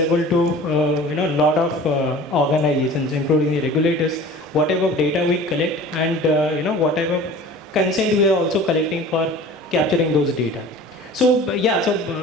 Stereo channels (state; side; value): normal; both; correlation 0.42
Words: to lot of organizations, including the regulators. Whatever data we collect and whatever consent we are also collecting for capturing those data. So we